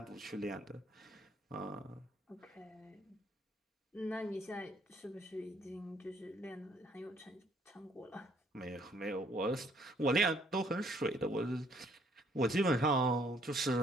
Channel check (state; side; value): normal; both; correlation 0.65